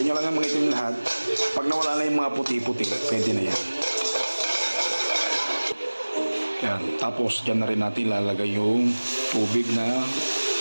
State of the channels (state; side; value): inverted; both; correlation -1.00